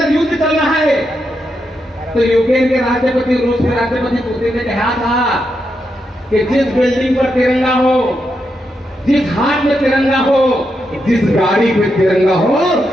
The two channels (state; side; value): normal; both; correlation 0.84